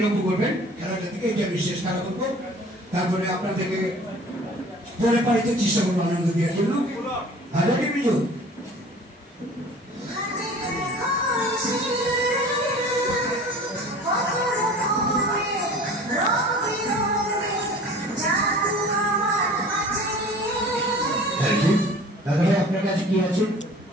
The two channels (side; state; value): both; normal; correlation 0.45